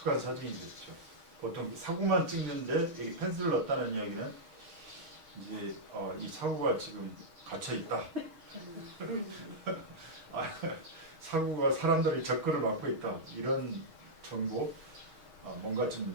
사진이 됐죠. 보통 사구만 찍는데 여기 펜스를 넣었다는 이야기는 이제 이 사구가 지금 갇혀 있다. 사구가 사람들의 접근을 막고 있다. 이런 정보, 뭔가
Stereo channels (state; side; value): late; left; 6.2 ms